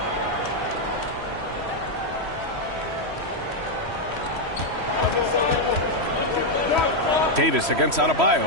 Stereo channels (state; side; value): late; left; 3.1 ms